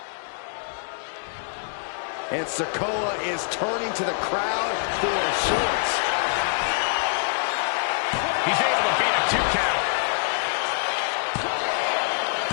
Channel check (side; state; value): right; silent; digital silence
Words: And Sikoa is turning to the crowd for shorts. He's able to beat a 2 count.